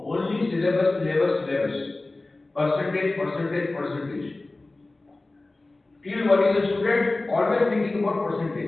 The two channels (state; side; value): quieter; right; 3.0 dB